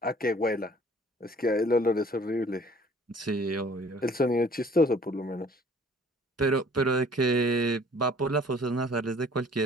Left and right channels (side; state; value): both; normal; correlation 0.54